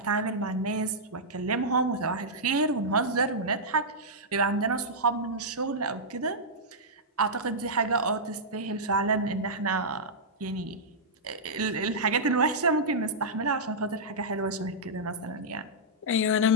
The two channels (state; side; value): normal; both; correlation -0.10